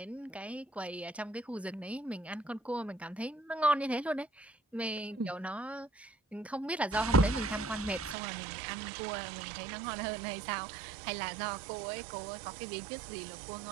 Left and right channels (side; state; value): left; drops out; at 8.2 s